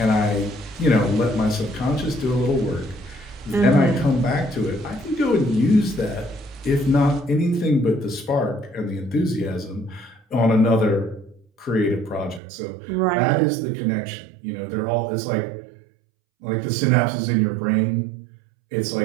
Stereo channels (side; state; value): left; drops out; at 12.4 s